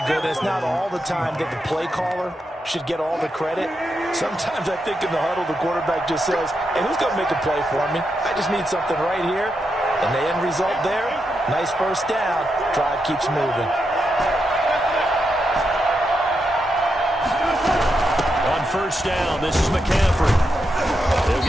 good. It's not all the time that the play caller should get all the credit. Sometimes I think in the huddle, the quarterback just says, hey, who's going to make a play for me? I just need something right here. And the end result there, nice first down. Drive keeps moving. On first down, this is McCaffrey. They'll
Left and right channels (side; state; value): both; normal; correlation 0.84